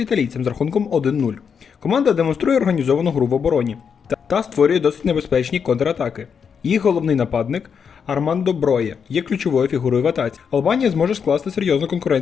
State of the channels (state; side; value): quieter; right; 6.7 dB